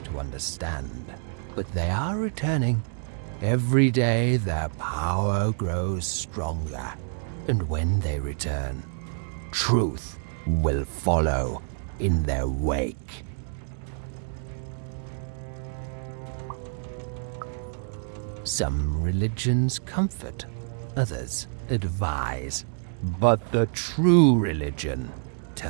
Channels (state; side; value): silent; left; 60 dB below the other